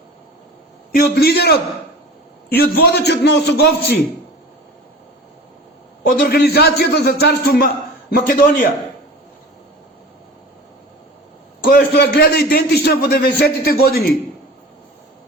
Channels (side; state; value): both; normal; correlation 0.38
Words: и од лидерот и од водачот на Осоговци, од Организацијата за царство Македонија, која што ја гледа идентична во 90-тите години.